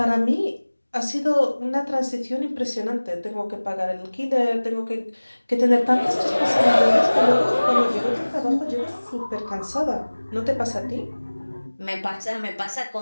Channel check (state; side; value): inverted; both; correlation -1.00